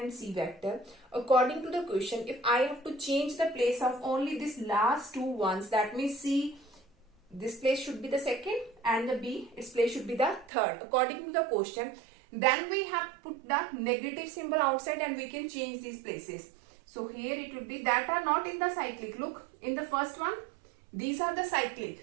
C vector. According to the question, if I have to change the place of only these last two ones, that means C, this place should be the second, and the B, its place should be the third. According to the question, then we have put the negative symbol outside and we can change these places. So here it would be that are not in the cyclic. Look, in the first one, these are the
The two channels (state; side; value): drops out; left; at 10.5 s